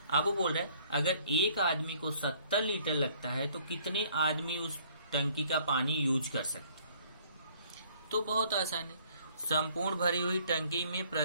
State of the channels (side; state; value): both; inverted; correlation -0.60